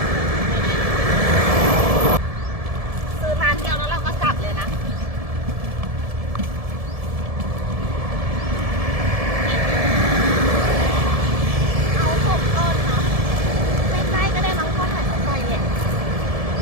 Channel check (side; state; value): left; late; 1.7 ms